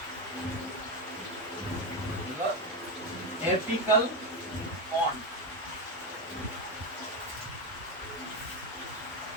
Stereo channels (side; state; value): both; normal; correlation 0.12